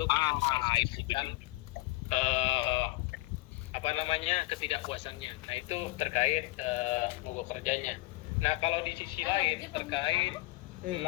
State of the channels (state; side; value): quieter; right; 21.8 dB